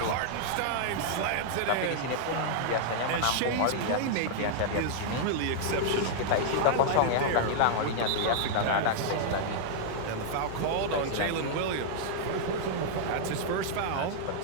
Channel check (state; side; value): different; both; correlation -0.01